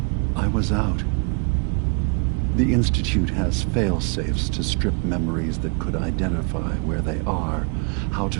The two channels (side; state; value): left; quieter; 33.8 dB